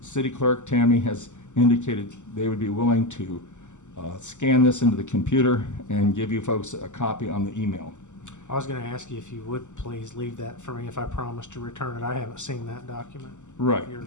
clerk, Tammy, has indicated they would be willing to scan this into the computer and give you folks a copy on the email. I was going to ask you if you would please leave that for me if I promise to return it. I haven't seen that document. Right. of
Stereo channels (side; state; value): right; late; 0.84 ms